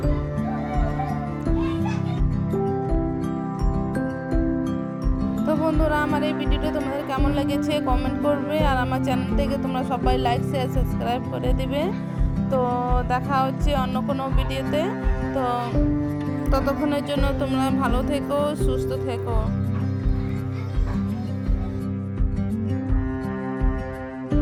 তো বন্ধু বন্ধুরা, আমার এই ভিডিওটা তোমাদের কেমন লেগেছে কমেন্ট করবে, আর আমার চ্যানেলটাকে তোমরা সবাই লাইক শেয়ার সাবস্ক্রাইব করে দিবে। তো দেখা হচ্ছে অন্য কোনো ভিডিওতে। তো ততক্ষণের জন্য তোমরা ভালো থেকো, সুস্থ থেকো।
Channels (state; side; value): identical; both; correlation 1.00